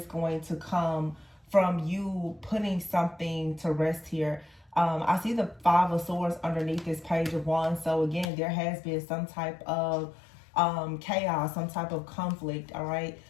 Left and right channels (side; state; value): right; drops out; at 8.2 s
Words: going to come from you putting something to rest here. I see the Five of Swords underneath this Page of Wands. So again, there has been some type of chaos, some type of conflict, all right?